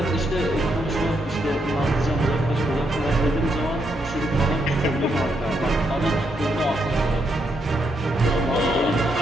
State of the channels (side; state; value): both; normal; correlation 0.78